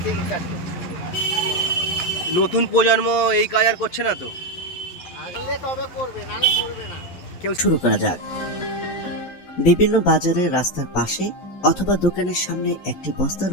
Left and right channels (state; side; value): late; right; 11 ms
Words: থেকে কাজ করছি। নতুন প্রজন্ম এই কাজ আর করছে না তো? আগলে তবে করবে, নাহলে করবে না। শুরু করা যাক। বিভিন্ন বাজারে, রাস্তার পাশে অথবা দোকানের সামনে একটি বস্তার